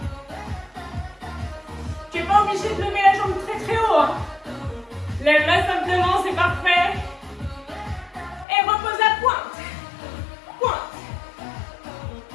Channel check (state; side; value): drops out; right; at 8.5 s